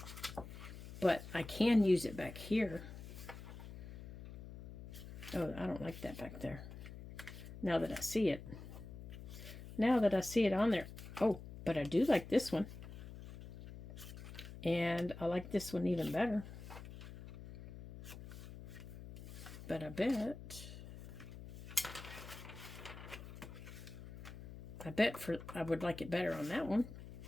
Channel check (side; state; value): left; noise; hum, 12 dB below the sound